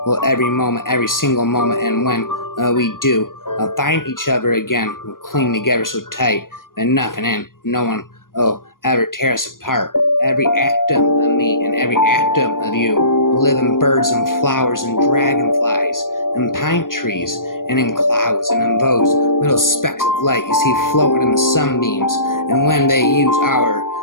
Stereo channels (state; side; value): late; right; 0.90 ms